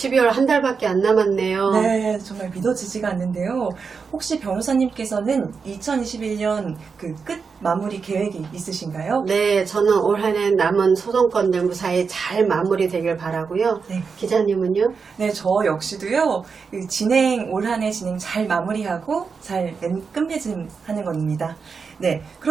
한 달밖에 안 남았네요. 네, 정말 믿어지지가 않는데요. 혹시 변호사님께서는 2021년 그 끝 마무리 계획이 있으신가요? 네, 저는 올 한 해 남은 소송건들 무사히 잘 마무리되길 바라고요. 네. 기자님은요? 네, 저 역시도요, 올 한 해 진행 잘 마무리하고 잘 끝맺음하는 겁니다. 네,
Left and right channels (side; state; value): left; quieter; 5.4 dB